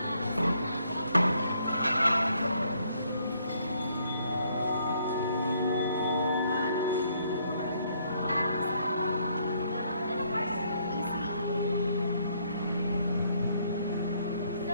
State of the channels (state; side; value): inverted; both; correlation -0.69